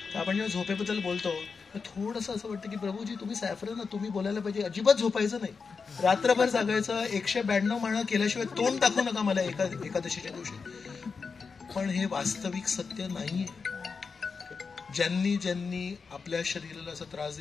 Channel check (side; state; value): right; quieter; 5.1 dB